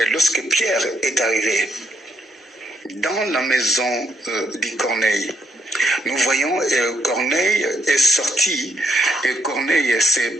lorsque Pierre est arrivé dans la maison de Corneille. Nous voyons Corneille est sorti et Corneille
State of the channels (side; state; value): both; normal; correlation 0.73